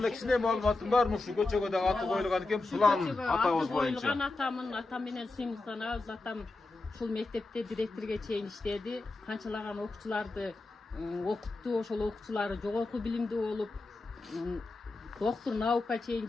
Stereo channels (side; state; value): right; quieter; 3.3 dB